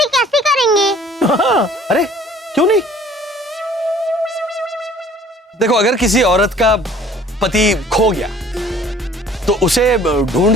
कैसे करेंगे? अरे क्यों नहीं? देखो, अगर किसी औरत का पति खो गया तो उसे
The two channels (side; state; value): both; normal; correlation 0.53